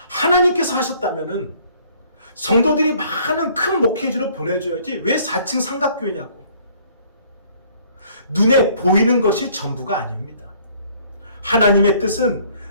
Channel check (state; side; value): inverted; both; correlation -0.59